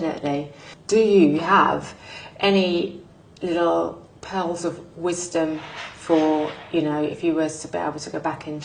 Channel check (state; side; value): identical; both; correlation 1.00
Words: Yeah. Do you have any little pearls of wisdom for, you know, if you were to be able to go back in